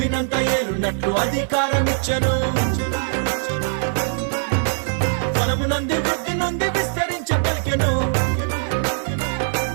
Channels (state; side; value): silent; left; digital silence